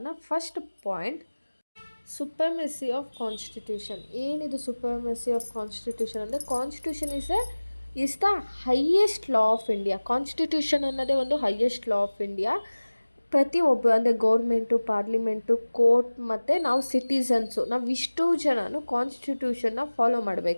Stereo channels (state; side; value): inverted; both; correlation -1.00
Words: First point, supremacy of constitution. ಏನಿದು ಸುಪ್ರಮೆಸಿ ಆಫ್ ಕಾನ್ಸ್ಟಿಟ್ಯೂಷನ್ ಅಂದರೆ, constitution is the highest law of India. Constitution ಅನ್ನೋದೇ ಒಂದು ಹೈಯೆಸ್ಟ್ ಲಾ ಆಫ್ ಇಂಡಿಯಾ. ಪ್ರತಿಯೊಬ್ಬರು ಅಂದರೆ ಗೌರ್ಮೆಂಟು, ಪಾರ್ಲಿಮೆಂಟು, ಕೋರ್ಟ್ ಮತ್ತು ನಾವು ಸಿಟಿಸನ್ಸು, ನಾವು ಇಷ್ಟು ಜನನು ಕಾನ್ಸ್ಟಿಟ್ಯೂಷನ್ನ ಫಾಲೋ